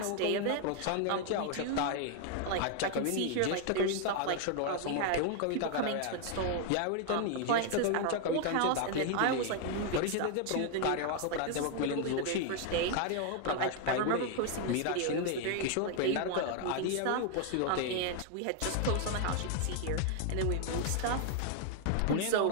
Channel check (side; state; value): both; different; correlation 0.00